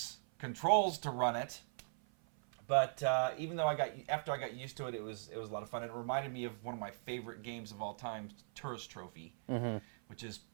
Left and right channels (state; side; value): silent; left; 51 dB below the other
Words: controls to run it. But even though after I got used to it, it was a lot of fun. It reminded me of one of my favorite games of all time, Tourist Trophy, which is